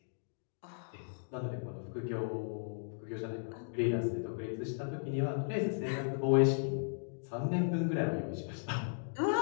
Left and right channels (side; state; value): right; silent; digital silence